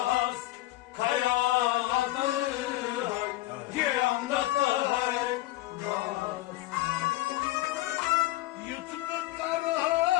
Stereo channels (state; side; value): quieter; right; 17.3 dB